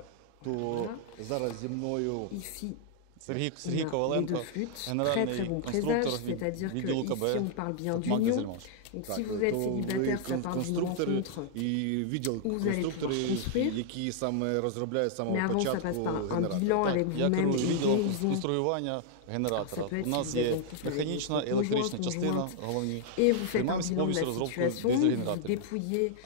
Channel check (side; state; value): both; different; correlation -0.01